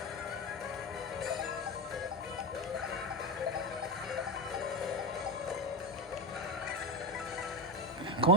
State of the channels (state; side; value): normal; both; correlation 0.17